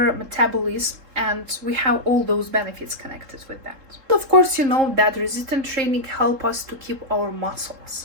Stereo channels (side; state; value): left; late; 3.7 ms